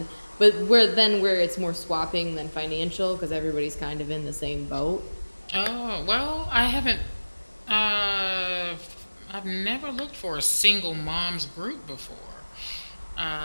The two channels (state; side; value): inverted; both; correlation -1.00